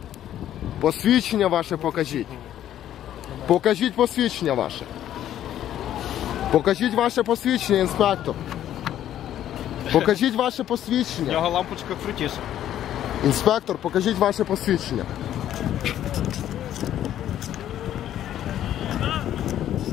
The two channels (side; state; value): right; quieter; 11.6 dB